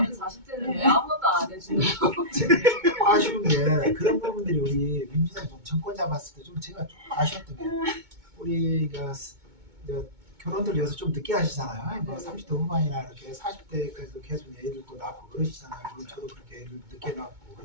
40대는 왜 아무것도 안 해주는 아쉬운 게 그런 부분들이 우리 민주당 좀 정권 잡았을 때 좀 제가 좀 아쉬웠던 게 우리가 결혼들 요새 좀 늦게 하시잖아요. 뭐 30대 후반이나 이렇게 40대까지도 계속 애를 또 낳고 그러시잖아요. 물론 저도 그렇게 애를 늦게 낳고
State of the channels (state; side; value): late; left; 2.2 ms